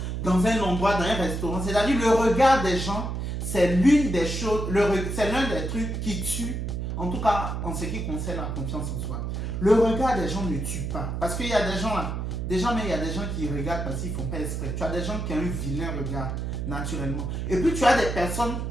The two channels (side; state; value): right; noise; hum, 3 dB below the sound